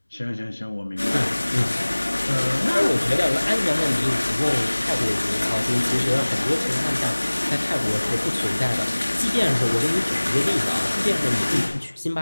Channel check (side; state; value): both; inverted; correlation -1.00